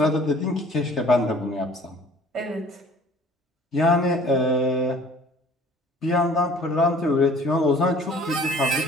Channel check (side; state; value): both; normal; correlation 0.51